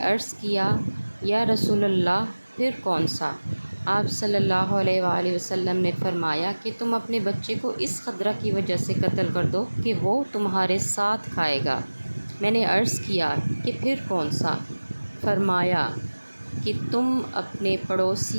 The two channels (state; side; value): inverted; both; correlation -1.00